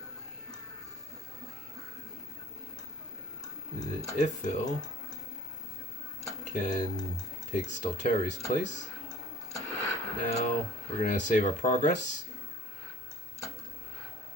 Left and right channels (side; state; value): both; normal; correlation 0.50